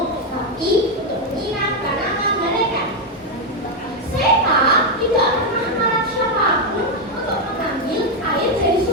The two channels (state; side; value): normal; both; correlation 0.04